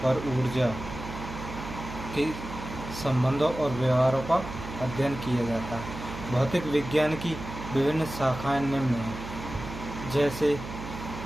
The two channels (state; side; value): noise; right; hum, 10 dB below the sound